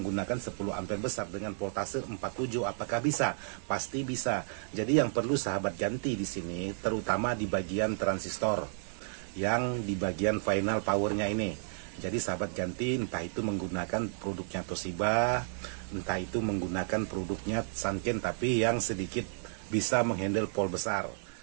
10 ampere besar dengan voltase 47, apakah bisa? Pasti bisa. Jadi yang perlu sahabat ganti di sini terutama di bagian transistor, yang di bagian final powernya ini. Jadi sahabat ganti, entah itu menggunakan produknya Toshiba, entah itu menggunakan produknya Sanken, tapi yang sedikit bisa menghandle volt besar.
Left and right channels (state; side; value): silent; left; 56 dB below the other